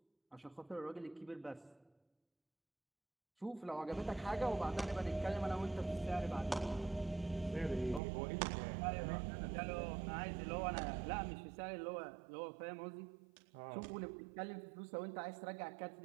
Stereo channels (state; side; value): drops out; left; at 8.0 s